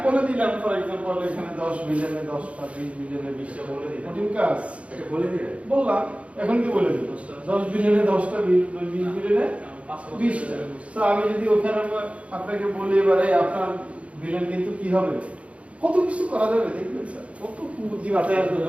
বলে দিলাম, ফর এক্সাম্পল এখানে 10 বিলিয়নে 10টা, 20 বিলিয়নে 20টা বলে দিলাম, কঠিন কাজ এটা বলে দিলে বললাম, এখন কি বলে দিল? 10 বিলিয়নে 10টা, 20 বিলিয়নে 20টা। তো আমি যদি ওখানে আপনাকে বলি এবারে আপনার বিলিয়ন কিন্তু কি হবে, কত কিছু করা যাবে দেখবেন স্যার, কত বুদ্ধি মাথায় আসবে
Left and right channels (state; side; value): late; left; 0.063 ms